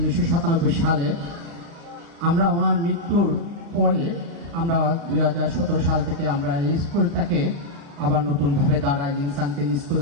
সালে। আমরা ওনার মৃত্যুর পরে আমরা 2017 সাল থেকে আমরা এই স্কুলটাকে আবার নতুনভাবে দাঁড়ায় ইনসানকেজ স্কুল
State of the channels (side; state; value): left; late; 35 ms